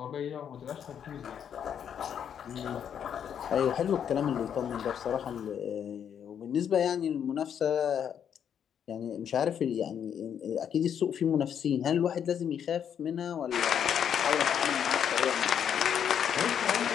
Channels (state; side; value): quieter; right; 8.5 dB